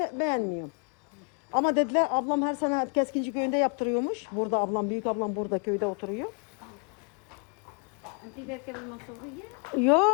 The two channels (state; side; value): quieter; right; 36.3 dB